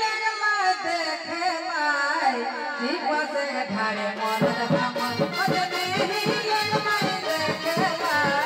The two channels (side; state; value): both; identical; correlation 1.00